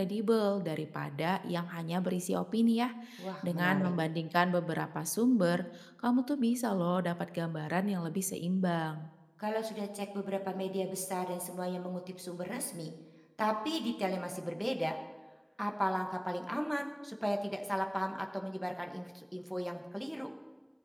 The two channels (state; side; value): identical; both; correlation 1.00